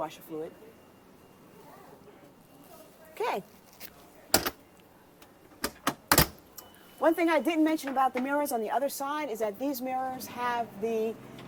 fluid. Okay. One thing I didn't mention about the mirrors on the other side is that these mirrors have the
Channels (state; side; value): identical; both; correlation 1.00